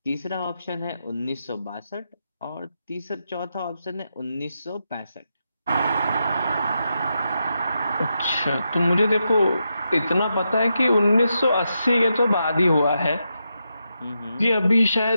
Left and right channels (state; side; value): inverted; both; correlation -0.85